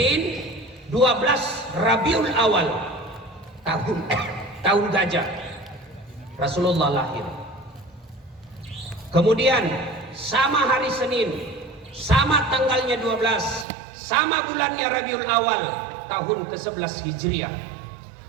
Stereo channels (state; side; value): drops out; left; at 13.7 s